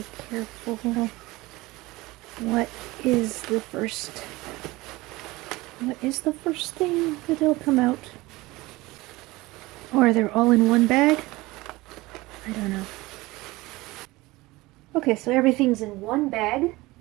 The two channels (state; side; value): quieter; left; 20.6 dB